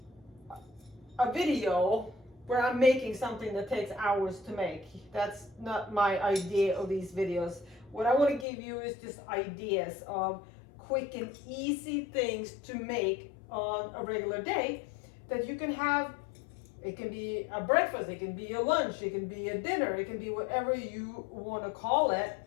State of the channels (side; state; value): right; drops out; at 8.5 s